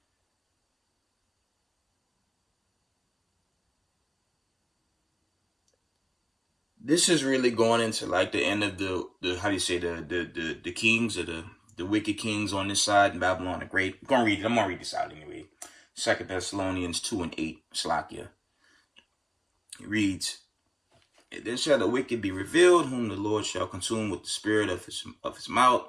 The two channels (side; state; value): both; identical; correlation 1.00